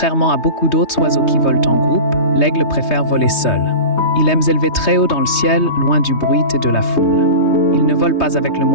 à beaucoup d'autres oiseaux qui volent en groupe, l'aigle préfère voler seul. Il aime s'élever très haut dans le ciel, loin du bruit et de la foule. Il ne vole pas avec le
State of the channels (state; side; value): late; right; 3.2 ms